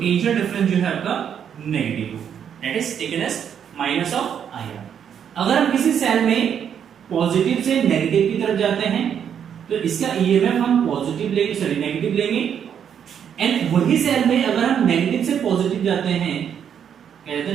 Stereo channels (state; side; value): quieter; left; 8.4 dB